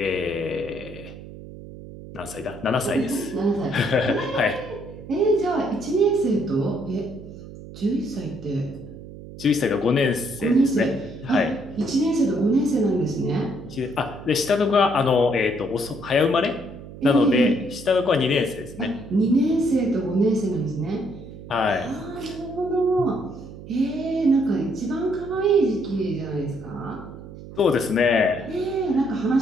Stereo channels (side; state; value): right; noise; hum, 14 dB below the sound